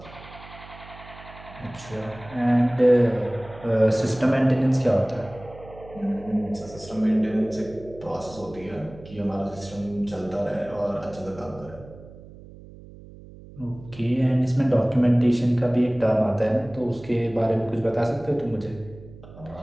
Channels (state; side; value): noise; right; hum, 18 dB below the sound